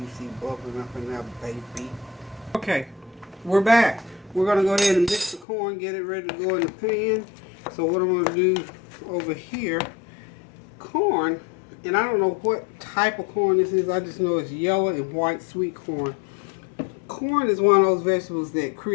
see bubbling up in there, baby. Okay, we're back. We're going to go ahead and mix the corn, get it ready to go in the pan. So what I'm going to do over here, corn, and I don't know what type of corn this is. I just know it's yellow and white sweet corn. Corn is one of those vegetables that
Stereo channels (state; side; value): drops out; right; at 5.5 s